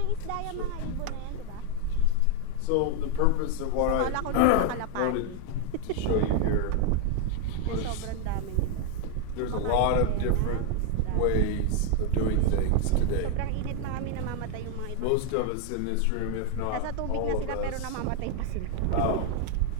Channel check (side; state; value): both; different; correlation 0.01